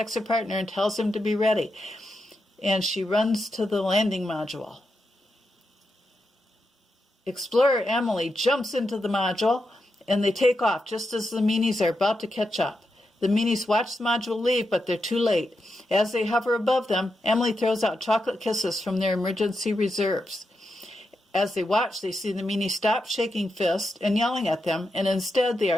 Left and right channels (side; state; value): both; normal; correlation 0.86